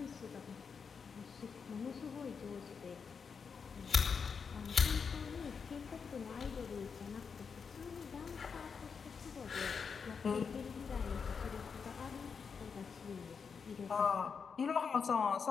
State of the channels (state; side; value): quieter; right; 5.9 dB